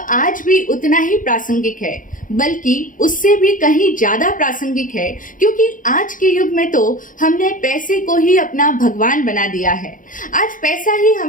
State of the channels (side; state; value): right; late; 0.39 ms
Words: भी उतना ही प्रासंगिक है, बल्कि उससे भी कहीं ज्यादा प्रासंगिक है, क्योंकि आज के युग में तो हमने पैसे पैसे को ही अपना भगवान बना दिया है। आज पैसा ही